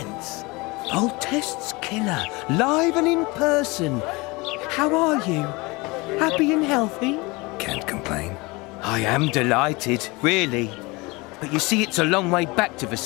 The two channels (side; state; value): right; quieter; 24.6 dB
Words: Voltest's killer, live and in person. How are you? Happy and healthy? Can't complain. I am delighted, really. But you see, it's a long way back to